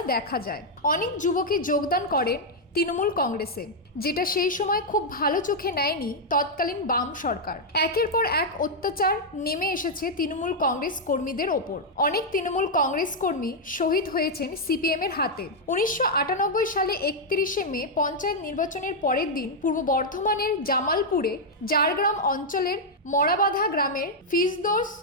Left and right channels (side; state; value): both; normal; correlation -0.03